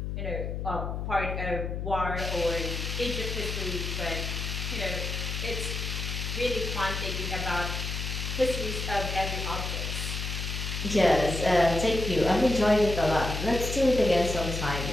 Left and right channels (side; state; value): left; noise; hum, 4 dB below the sound